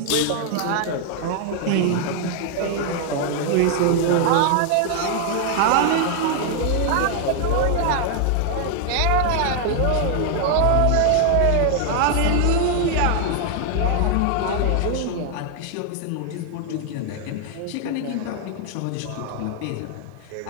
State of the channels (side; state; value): both; different; correlation 0.00